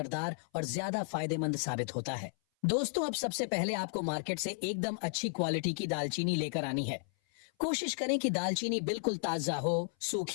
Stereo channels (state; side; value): silent; right; 55 dB below the other